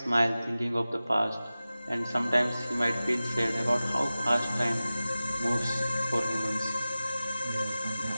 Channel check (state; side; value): inverted; both; correlation -0.96